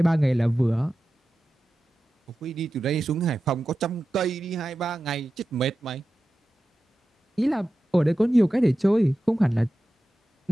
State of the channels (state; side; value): normal; both; correlation 0.93